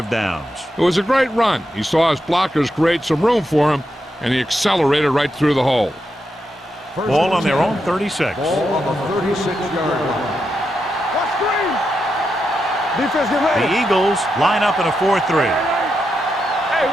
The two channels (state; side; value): normal; both; correlation 0.85